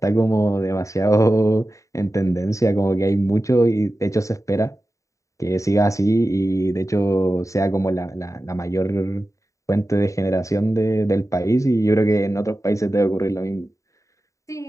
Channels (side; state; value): right; late; 0.16 ms